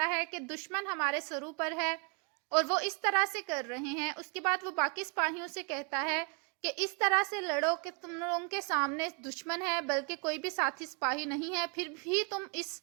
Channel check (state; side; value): quieter; left; 35.1 dB